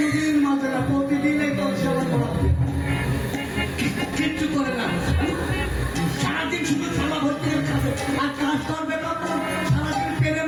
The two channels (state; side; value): identical; both; correlation 1.00